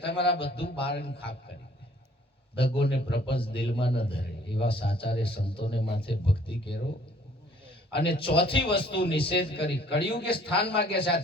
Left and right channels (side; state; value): both; normal; correlation 0.57